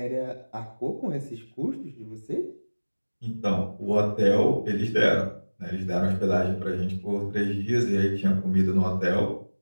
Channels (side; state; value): both; inverted; correlation -1.00